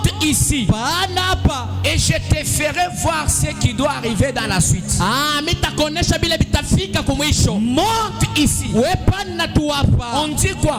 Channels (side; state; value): both; identical; correlation 1.00